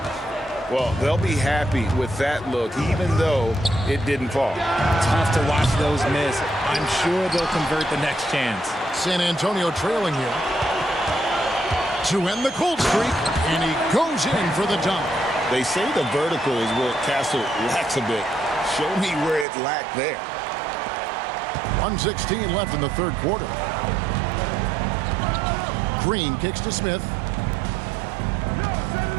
Well, they'll be happy with that look, even though it didn't fall. Tough to watch those miss. I'm sure they'll convert the next chance. San Antonio trailing here to end the cold streak, and he goes in for the dunk. They say the vertical is where Castle lacks a bit. Show me where it lacked there. 1:16 left in the third quarter. Green kicks to Smith.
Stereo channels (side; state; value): left; drops out; at 19.5 s